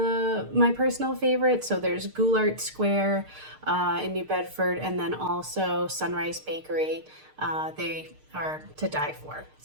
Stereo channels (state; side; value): late; left; 6.6 ms